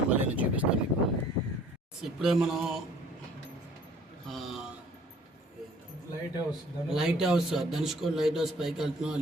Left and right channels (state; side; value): normal; both; correlation 0.54